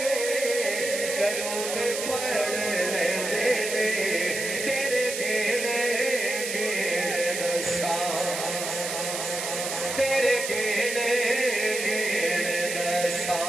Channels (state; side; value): noise; right; hiss, 4 dB below the sound